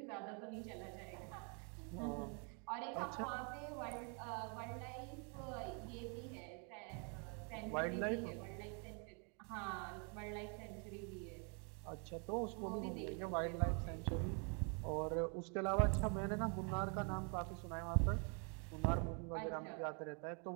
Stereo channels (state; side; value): quieter; left; 38.4 dB